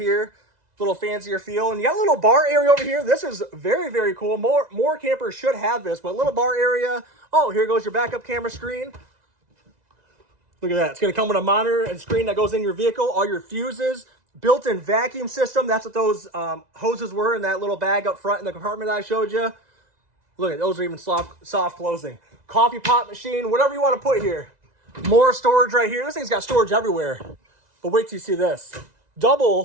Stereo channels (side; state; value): left; late; 2.0 ms